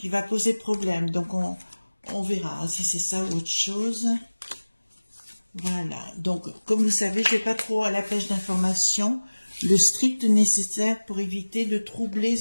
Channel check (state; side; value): inverted; both; correlation -1.00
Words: va poser problème. Donc, on verra si c'est ça ou autre chose. Voilà. Donc, comme vous savez, je ne vais pas trop à la pêche d'informations. Le strict nécessaire pour éviter de troubler